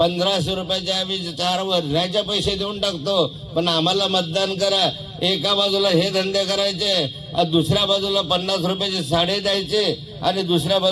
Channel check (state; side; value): identical; both; correlation 1.00